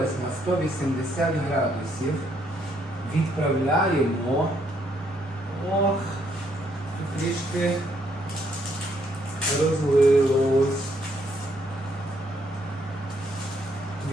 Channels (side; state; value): both; normal; correlation 0.71